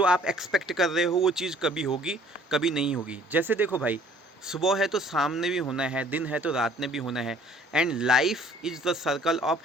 आप एक्सपेक्ट कर रहे हो वो चीज़ कभी होगी, कभी नहीं होगी। जैसे देखो भाई, सुबह है तो शाम ने भी होना है, दिन है तो रात ने भी होना है। And life is the circle of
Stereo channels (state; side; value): normal; both; correlation 0.56